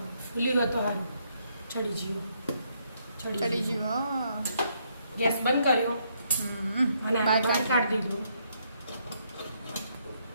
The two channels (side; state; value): both; inverted; correlation -0.73